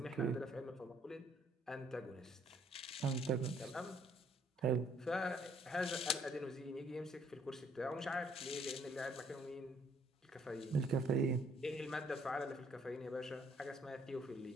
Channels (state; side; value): normal; both; correlation 0.64